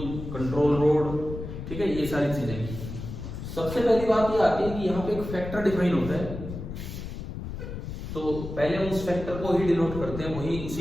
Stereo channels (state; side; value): noise; left; rumble, 8 dB below the sound